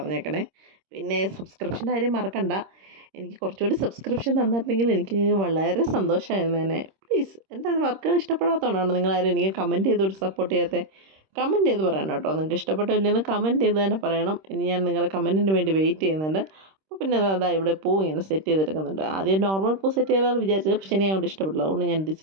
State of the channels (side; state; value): left; late; 26 ms